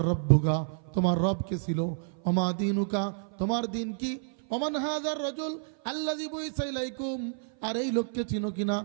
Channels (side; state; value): left; silent; 55 dB below the other